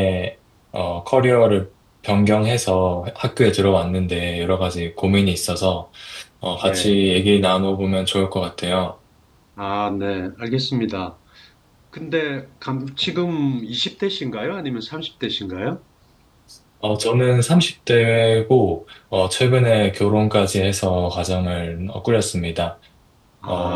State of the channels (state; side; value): identical; both; correlation 1.00